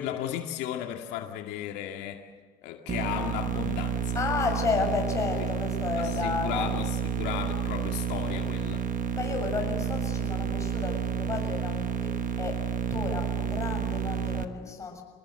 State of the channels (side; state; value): both; normal; correlation 0.38